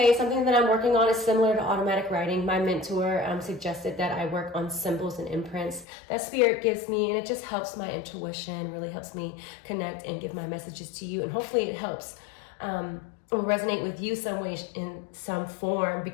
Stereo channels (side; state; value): right; drops out; at 5.9 s